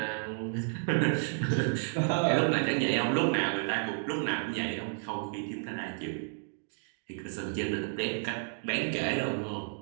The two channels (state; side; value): silent; left; digital silence